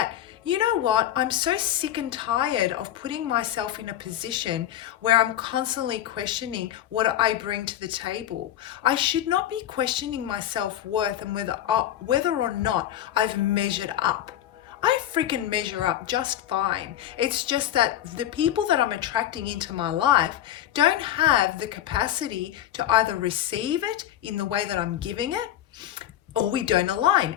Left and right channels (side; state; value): right; quieter; 12.0 dB